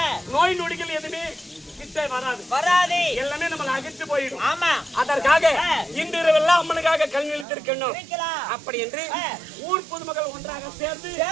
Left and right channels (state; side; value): drops out; left; at 7.5 s